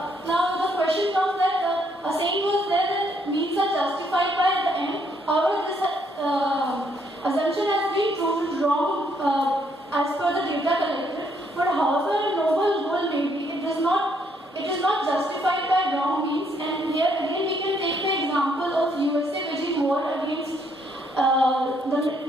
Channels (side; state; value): both; normal; correlation 0.71